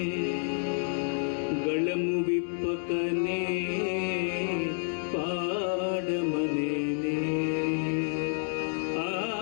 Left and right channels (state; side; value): silent; right; 58 dB below the other